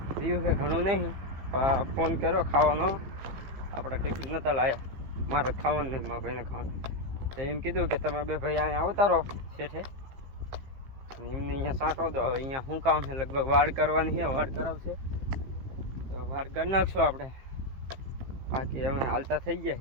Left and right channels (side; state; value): left; late; 15 ms